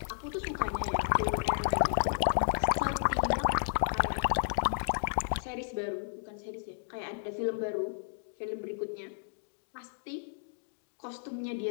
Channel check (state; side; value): silent; right; digital silence